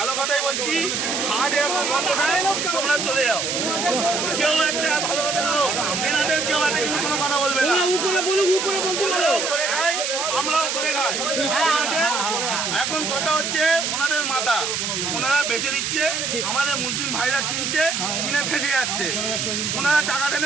কথাই বলছি, হাট এখন বন্ধ নাই, তোমরা চলে যাও। কেউ একটা ভালো কথা বলো, এনাদের কেউ একটা কিন্তু কোনো কথা বলবে না। উপরে বলুক, উপরে বলতে বলো, করে খাই, আমরাও করে খাই। এখন কথা হচ্ছে ওনাদের মাথা, ওনারা বেচে দিচ্ছে, আমাদের মুসলিম ভাইরা কিনছে, কিনে ফেসে যাচ্ছে, ওনারা টাকা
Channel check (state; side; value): noise; right; hiss, 1 dB below the sound